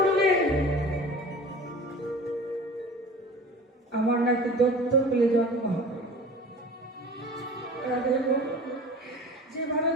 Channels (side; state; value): both; normal; correlation 0.40